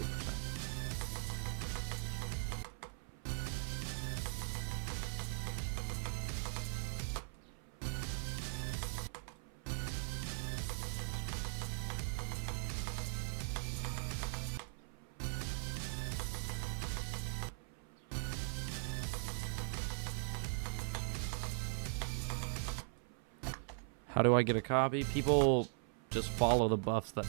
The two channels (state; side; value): silent; left; 51 dB below the other